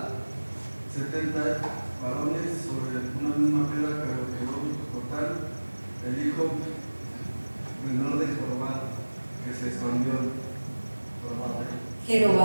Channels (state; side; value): inverted; both; correlation -1.00